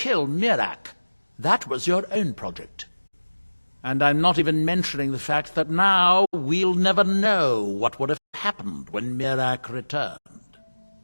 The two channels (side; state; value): both; inverted; correlation -1.00